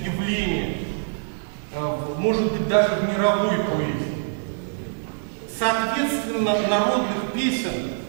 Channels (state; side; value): silent; left; digital silence